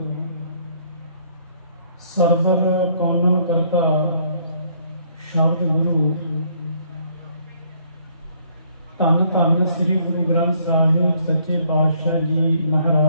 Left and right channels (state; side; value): inverted; both; correlation -0.65